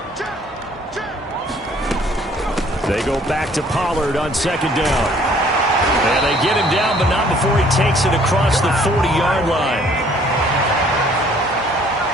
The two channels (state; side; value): normal; both; correlation 0.59